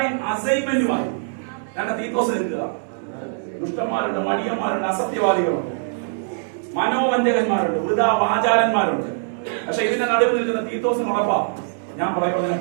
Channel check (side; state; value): left; silent; digital silence